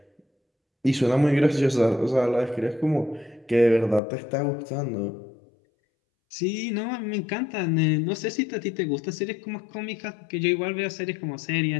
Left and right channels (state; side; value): drops out; right; at 4.0 s